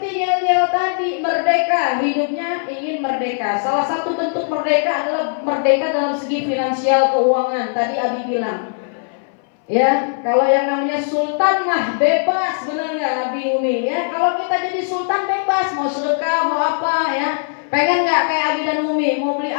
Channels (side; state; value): right; silent; 63 dB below the other